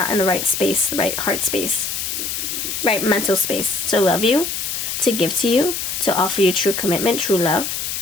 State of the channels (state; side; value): noise; left; hiss, 3 dB below the sound